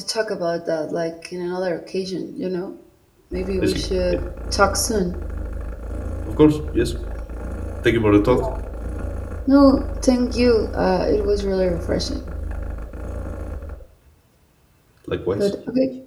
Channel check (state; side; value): identical; both; correlation 1.00